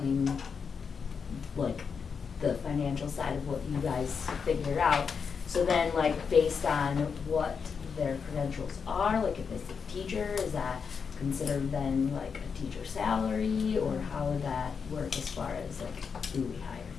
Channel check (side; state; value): right; quieter; 6.0 dB